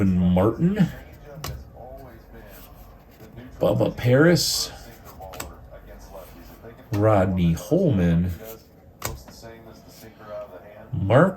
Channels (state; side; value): identical; both; correlation 1.00